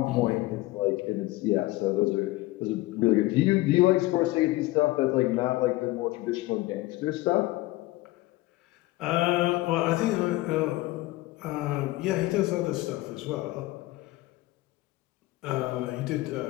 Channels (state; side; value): quieter; right; 18.9 dB